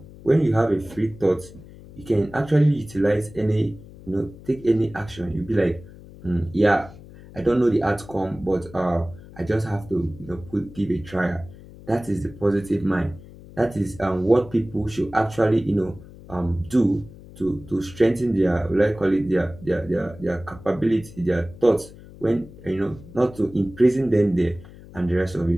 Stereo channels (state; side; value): noise; left; hum, 19 dB below the sound